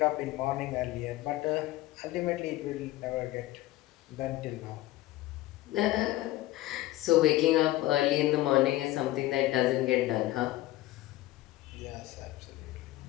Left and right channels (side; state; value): right; quieter; 16.6 dB